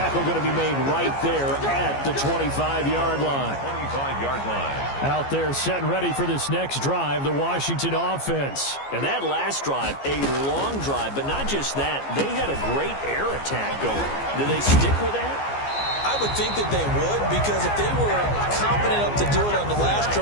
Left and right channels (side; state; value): right; late; 15 ms